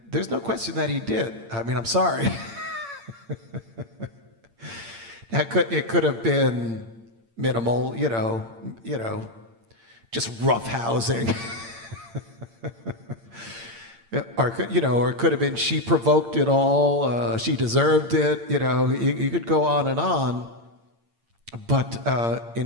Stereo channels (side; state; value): left; late; 8.8 ms